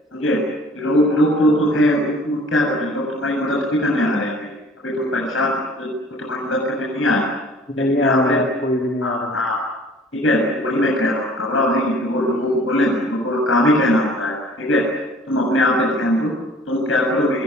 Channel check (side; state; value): both; normal; correlation 0.51